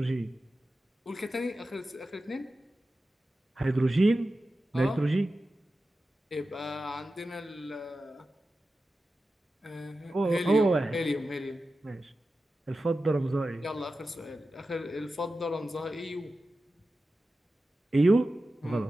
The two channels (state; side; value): normal; both; correlation 0.93